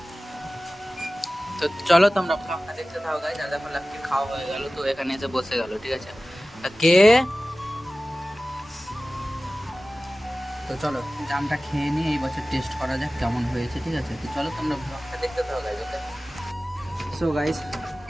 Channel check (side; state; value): both; normal; correlation 0.97